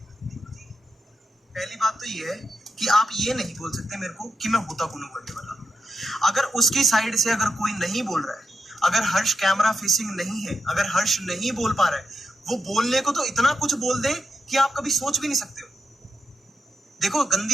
पहली बात तो ये है कि आप ये नहीं बोल सकते मेरे को कि मैं होता कौन करने वाला। अगर उसकी साइड से अगर कोई नहीं बोल रहा है, अगर हर्ष कैमरा फेसिंग नहीं है, अगर हर्ष नहीं बोल पा रहा है, वो बोलने को तो इतना कुछ बोल दे कि आप कभी सोच भी नहीं सकते हो। देखो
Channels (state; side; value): normal; both; correlation 0.84